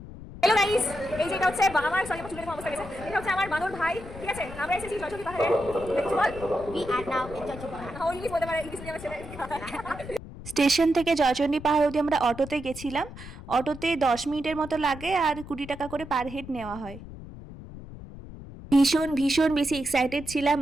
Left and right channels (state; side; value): noise; left; rumble, 13 dB below the sound